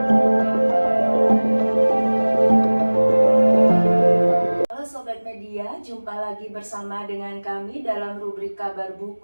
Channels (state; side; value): inverted; both; correlation -1.00